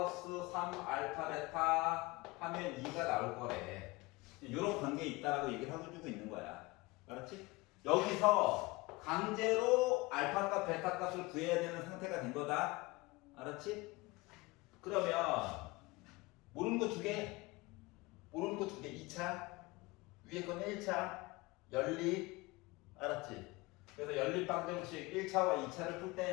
3알파 베타 하면 2가 나올 거래. 요런 관계에 있다라고 얘기를 하고 주고 있는 거야. 알았지? 여기서 강제로 알파 값, 베타 값을 구해야 되는 상태가 된 거다. 알았지? 그러면 모르는 거 2개, 모르는 거 2개, 2차, 위에 거는 1차, 연립. 알았지? 그래서 연립 방정식 1차와 2차를 풀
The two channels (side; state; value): right; quieter; 22.9 dB